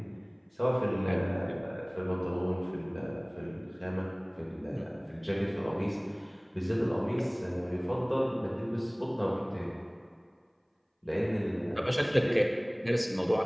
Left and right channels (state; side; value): identical; both; correlation 1.00